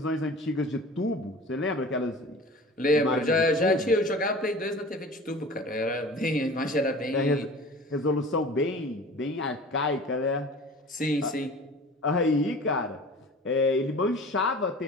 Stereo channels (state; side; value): normal; both; correlation 0.41